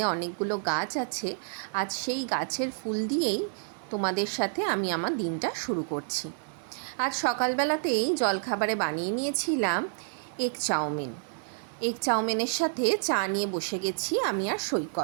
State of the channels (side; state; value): left; silent; digital silence